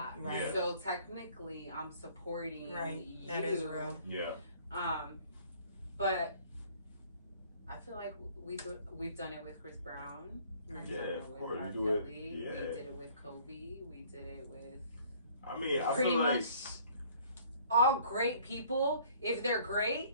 Right. Yeah. So technically, I'm supporting you. That is real. Yeah. But I feel like we've done it with Chris Brown. Yeah, of course. We do it. Yeah. We did it with Kobe. We did it with. I mean, I pretty feel like much all great people. If they're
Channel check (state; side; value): inverted; both; correlation -0.56